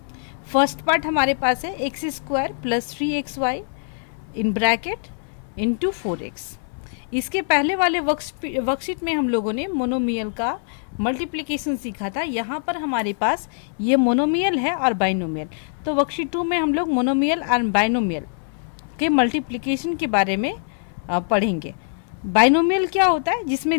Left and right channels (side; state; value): right; silent; 61 dB below the other